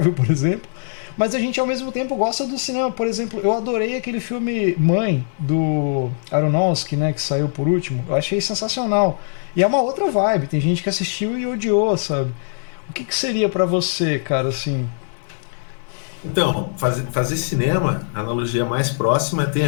por exemplo. Mas a gente ao mesmo tempo gosta do cinema. Por exemplo, eu adorei aquele filme Mãe, do Aronofsky, né? Que saiu por último. Eu achei sensacional. E é uma outra vibe. Tem gente que assistiu e odiou, sabe? O que, que seria pra você, cara, assim? Então, fazer cinema, a analogia mais próxima tem a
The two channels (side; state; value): right; silent; 65 dB below the other